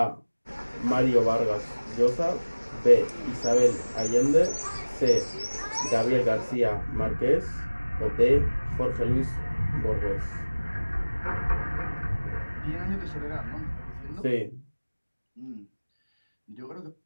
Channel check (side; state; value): both; inverted; correlation -1.00